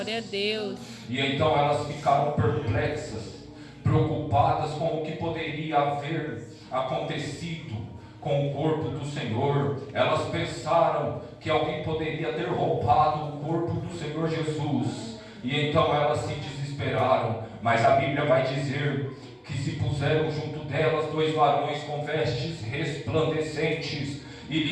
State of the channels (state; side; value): identical; both; correlation 1.00